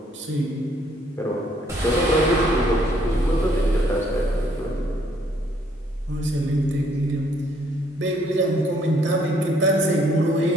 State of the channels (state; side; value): normal; both; correlation 0.66